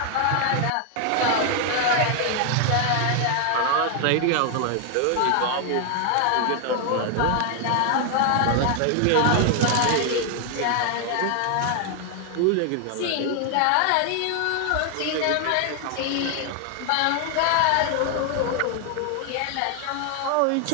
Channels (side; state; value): both; different; correlation 0.00